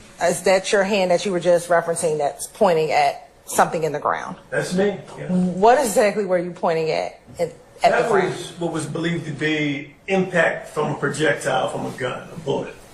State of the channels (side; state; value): both; identical; correlation 1.00